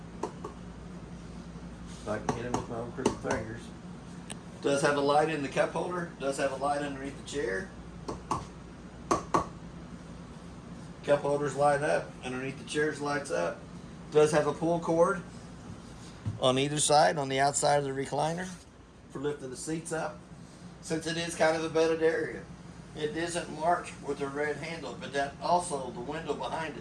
If I can hit him with my own crooked fingers. Does have a light in the cup holder. Does have a light underneath the chair. Cup holders light up. Underneath the chairs lights up. Does have a pull cord on either side, on the outside of the recliner for lifting the seats up. Since it is kind of a bedded area, it isn't marked with a red handle, but that also, the window behind it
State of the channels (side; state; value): both; identical; correlation 1.00